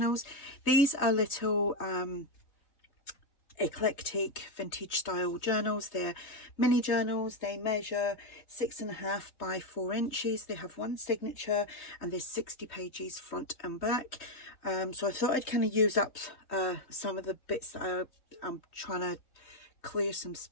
These are little eclectic vintage style journals. They're mini journals. They measure 6.5 by 4 inches. They have one signature and there's 60 pages front and back. So I thought I'd kind of use up some of the bits that I'm trying to clear some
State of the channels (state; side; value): late; right; 3.2 ms